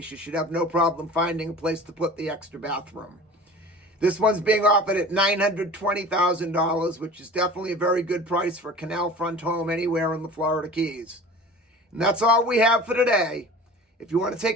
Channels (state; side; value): normal; both; correlation 0.40